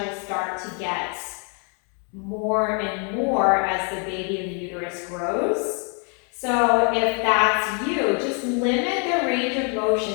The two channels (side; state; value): right; quieter; 38.7 dB